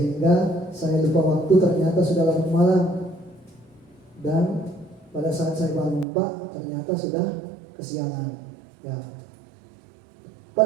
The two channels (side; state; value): left; drops out; at 6.1 s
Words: saya lupa waktu, ternyata sudah larut malam. Dan pada saat saya bangun Pak, ternyata sudah kesiangan. Ya.